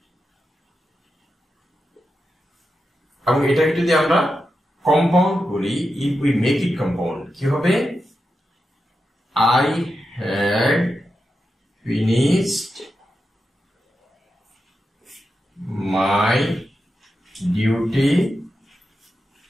এবং এটাকে যদি আমরা কম্পাউন্ড করি, if we make it compound কি হবে, I had finished my duty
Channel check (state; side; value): normal; both; correlation 0.89